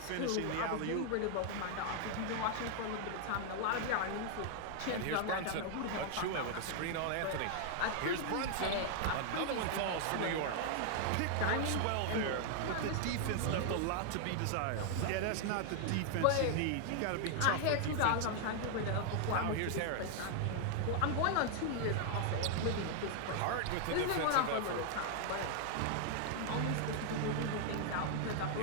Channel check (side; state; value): both; different; correlation 0.00